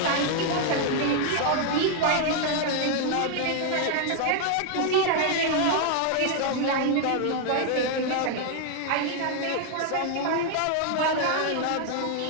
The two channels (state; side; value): different; both; correlation 0.00